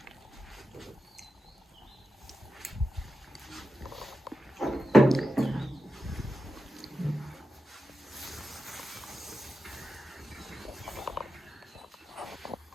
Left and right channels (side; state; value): both; normal; correlation 0.90